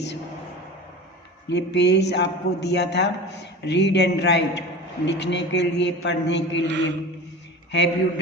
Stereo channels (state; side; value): normal; both; correlation 0.33